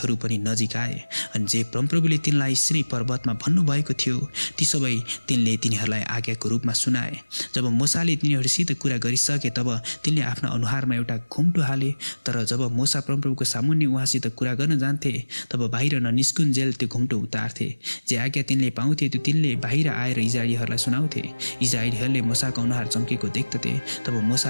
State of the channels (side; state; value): both; inverted; correlation -1.00